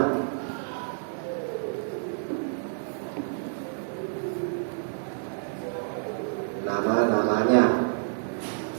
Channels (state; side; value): silent; left; digital silence